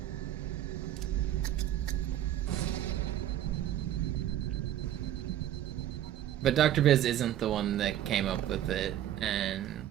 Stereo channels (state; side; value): quieter; left; 12.0 dB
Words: But Dr. Biz isn't the one that came up with it, and